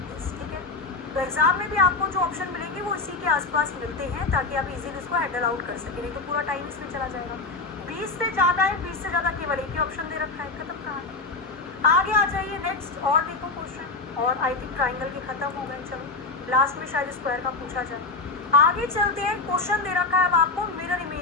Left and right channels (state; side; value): quieter; right; 3.7 dB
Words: ठीक है? तो एग्जाम में भी आपको जो ऑप्शन मिलेंगे वो इसी के आसपास मिलते हैं ताकि आप इजीली इसको हैंडल आउट कर सकें, नहीं तो पूरा टाइम इसमें चला जाएगा। 20 से ज्यादा है, 20 से ज्यादा केवल एक ही ऑप्शन दे रखा है। खत्म कहानी। आगे आ जाइए नेक्स्ट और देखो क्वेश्चन। और आई थिंक ट्राइंगल के खत्म हो गए। चलो लास्ट में शायद स्क्वायर का पूछा जाए। आगे चलते हैं। क्वेश्चन दे रखा है अब आपको मिरर